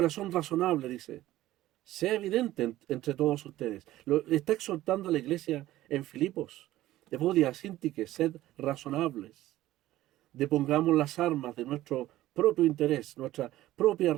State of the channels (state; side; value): quieter; left; 15.3 dB